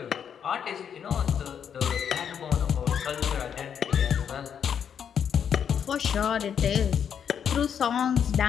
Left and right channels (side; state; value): right; quieter; 8.1 dB